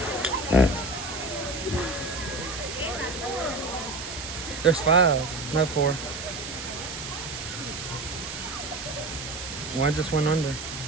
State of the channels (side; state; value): right; noise; hiss, 8 dB below the sound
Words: There's 5, no 4. One just went under.